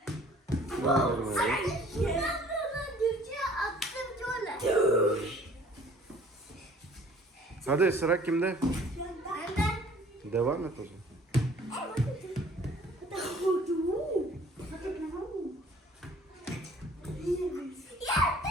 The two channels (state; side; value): normal; both; correlation 0.53